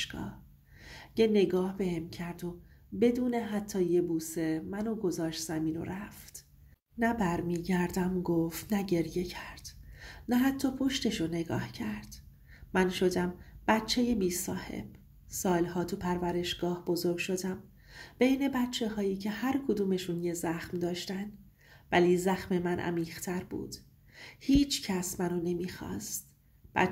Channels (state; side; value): identical; both; correlation 1.00